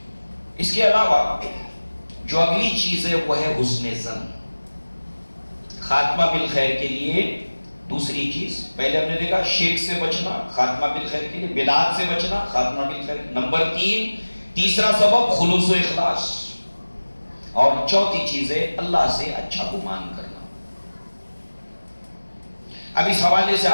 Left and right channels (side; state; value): both; inverted; correlation -1.00